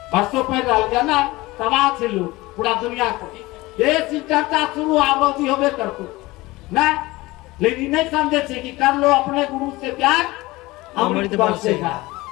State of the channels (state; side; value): quieter; right; 20.4 dB